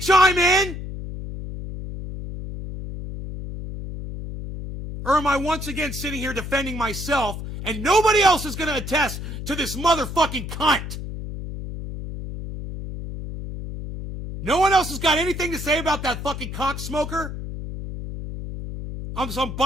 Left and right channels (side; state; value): left; noise; hum, 8 dB below the sound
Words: in? Or am I once again sitting here defending myself and nobody else is going to attest to this motherfucking cunt? No one else has got anything to say about that fucking cocksmoker? I'm